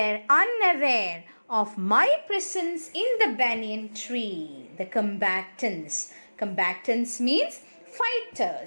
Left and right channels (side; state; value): both; inverted; correlation -1.00